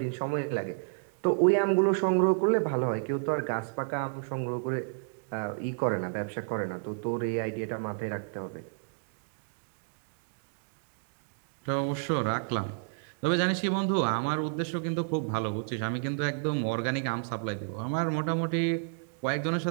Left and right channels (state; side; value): silent; left; digital silence